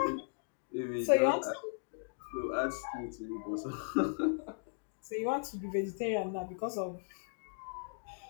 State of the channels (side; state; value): right; silent; digital silence